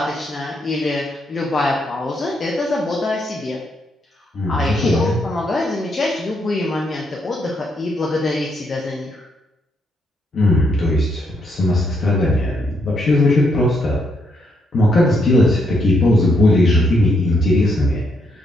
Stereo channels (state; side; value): normal; both; correlation 0.76